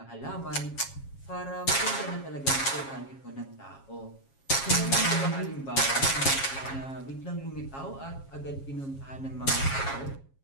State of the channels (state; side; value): late; right; 7.3 ms